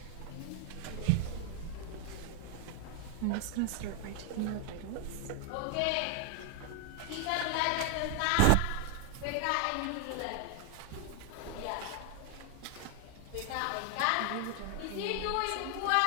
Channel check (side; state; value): both; different; correlation 0.00